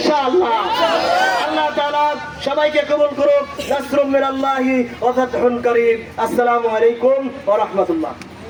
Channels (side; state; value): both; identical; correlation 1.00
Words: আল্লাহ তাআলা সবাইকে কবুল করুন। নাসরুম মিনাল্লাহি ওয়া ফাতহুন কারীম। আসসালামু আলাইকুম ওয়া রাহমাতুল্লাহ।